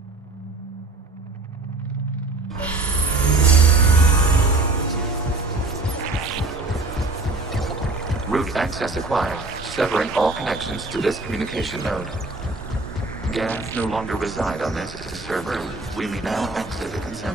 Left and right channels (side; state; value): left; quieter; 3.2 dB